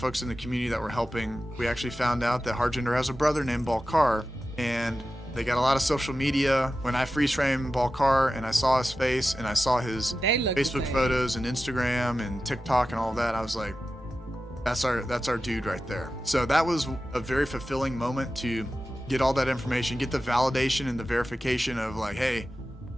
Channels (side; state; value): both; normal; correlation 0.93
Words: in the community that were helping. We actually found out that Harjinder has a brother named Balkar, and they got a lot of social media. When I freeze framed Balkar and I saw his face and I saw his They look the Facebook same. photos and Instagram and TikTok and all that, I was like, that's our dude right there. So that was a very fulfilling moment to get all that information, get the validation and the verification of like, hey,